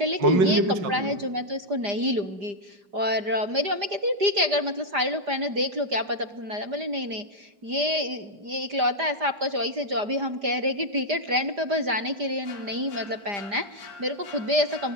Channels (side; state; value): left; late; 5.0 ms